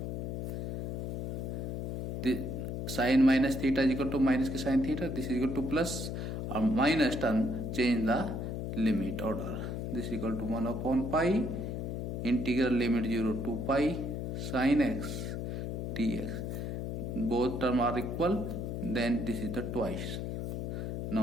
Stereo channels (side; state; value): left; noise; hum, 3 dB below the sound